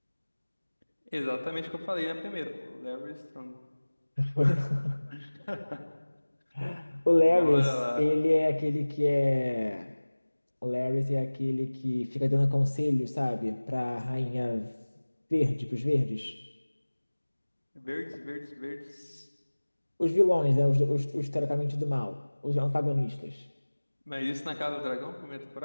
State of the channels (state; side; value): inverted; both; correlation -1.00